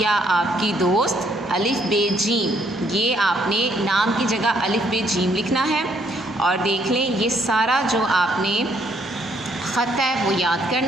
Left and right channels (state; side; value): normal; both; correlation 0.69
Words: आपकी दोस्त अलिफ बे जीम। ये आपने नाम की जगह अलिफ बे जीम लिखना है। और देख लें, ये सारा जो आपने ख़त है वो याद